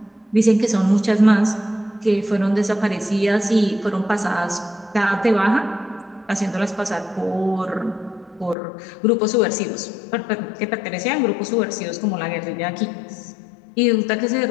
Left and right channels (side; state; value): right; drops out; at 8.6 s